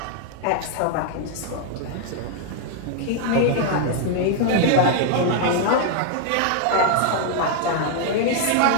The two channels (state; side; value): different; both; correlation 0.00